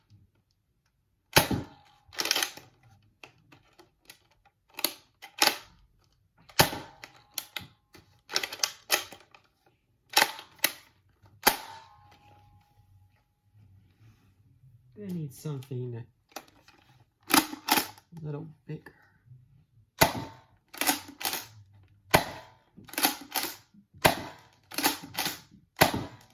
I need something a little bigger.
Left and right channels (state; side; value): identical; both; correlation 1.00